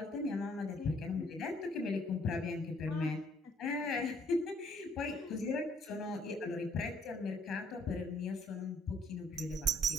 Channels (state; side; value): normal; both; correlation 0.64